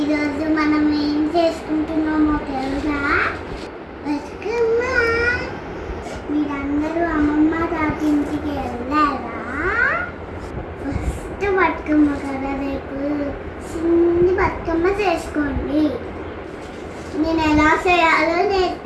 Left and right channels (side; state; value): both; identical; correlation 1.00